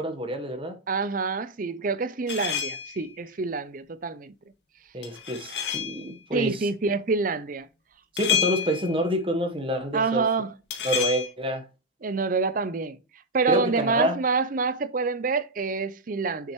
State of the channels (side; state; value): both; normal; correlation 0.05